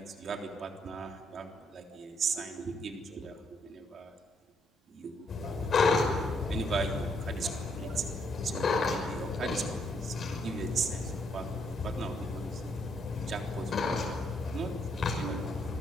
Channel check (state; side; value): normal; both; correlation 0.73